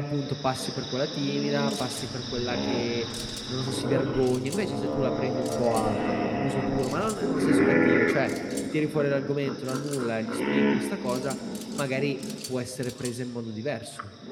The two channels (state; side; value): identical; both; correlation 1.00